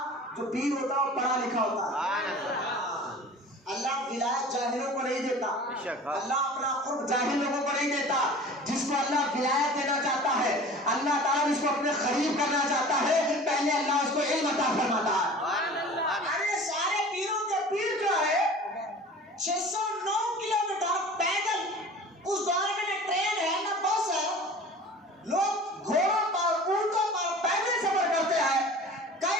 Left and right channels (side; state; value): both; normal; correlation 0.41